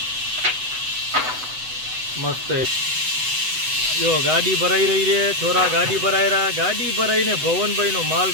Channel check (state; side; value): late; left; 8.0 ms